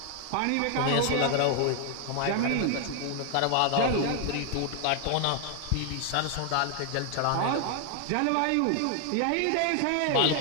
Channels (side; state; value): both; different; correlation 0.00